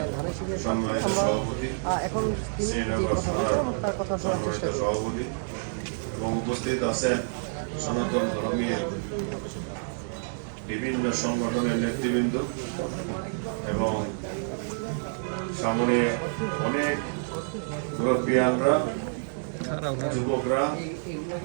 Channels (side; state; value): left; silent; digital silence